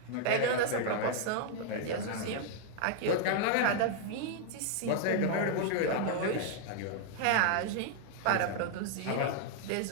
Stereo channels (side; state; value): both; different; correlation 0.00